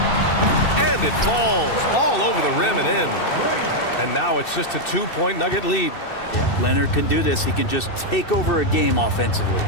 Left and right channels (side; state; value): right; late; 2.6 ms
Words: And it falls all over the rim and in. And now it's just a 2-point Nugget lead. Yeah, Leonard can do this. He can just take over a game offensively.